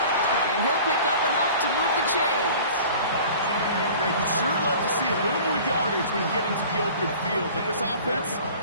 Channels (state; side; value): inverted; both; correlation -0.44